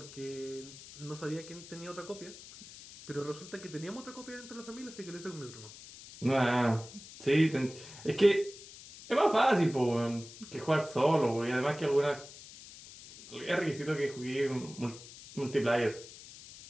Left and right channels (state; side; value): noise; left; hiss, 16 dB below the sound